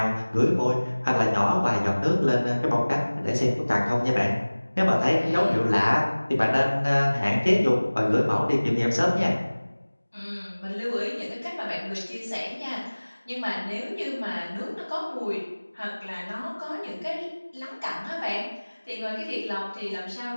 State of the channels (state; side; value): inverted; both; correlation -1.00